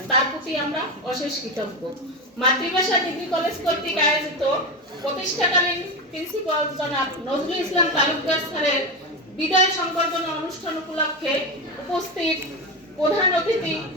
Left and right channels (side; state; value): both; normal; correlation 0.17